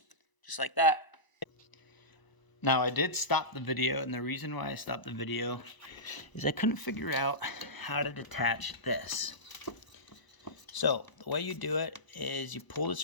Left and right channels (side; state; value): right; late; 1.0 ms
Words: Just like that. Now I did stop the video, and the reason why I stopped the video is I couldn't figure out how to detach this. So the way you do it is you pull